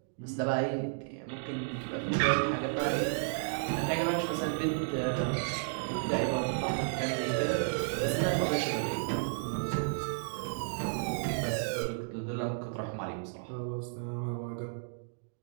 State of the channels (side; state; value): left; silent; digital silence